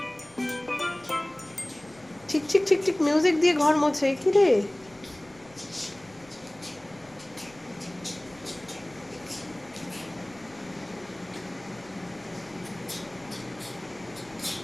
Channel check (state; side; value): noise; left; rumble, 26 dB below the sound